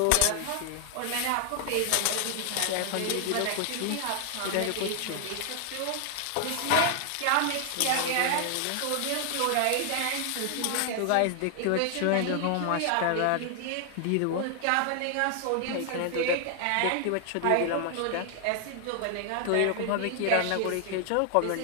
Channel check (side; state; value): both; different; correlation 0.00